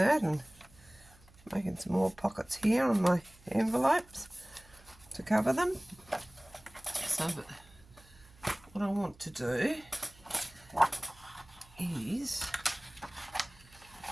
and making some more pockets here on my envelopes to cover them. So what I want to do is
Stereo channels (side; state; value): right; noise; hum, 26 dB below the sound